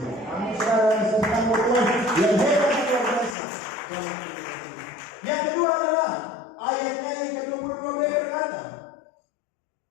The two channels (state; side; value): drops out; right; at 3.4 s